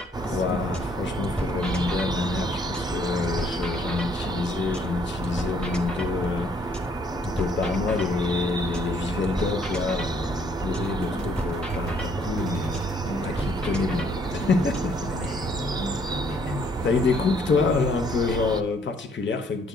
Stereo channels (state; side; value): normal; both; correlation 0.65